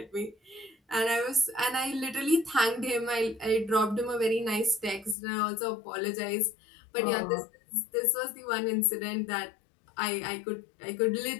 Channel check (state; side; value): drops out; right; at 5.2 s